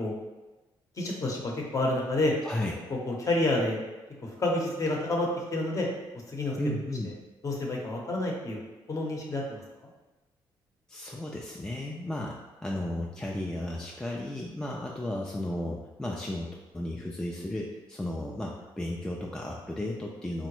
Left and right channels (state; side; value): normal; both; correlation 0.70